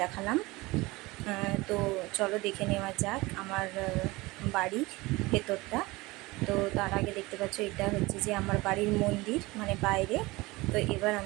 দেখালাম। তো চলো দেখে নেওয়া যাক আমার বাড়ির ভেতরটা। তো তার আগে দেখতে পাচ্ছ, এটা হচ্ছে যে আমার বাড়ির মন্দির, মানে বাইরে। তো এবার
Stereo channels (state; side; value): quieter; left; 21.8 dB